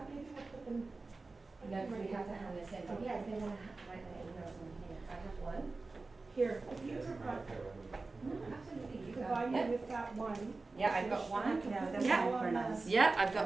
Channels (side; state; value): left; quieter; 3.6 dB